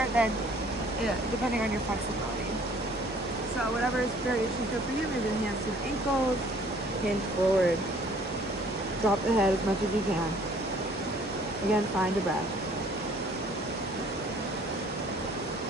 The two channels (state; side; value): normal; both; correlation 0.57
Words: than depending on your flexibility. So whatever is variation good for you, maybe the hands to the ankles, hinge forward. Drop the head as much as you can. Again, find a breath.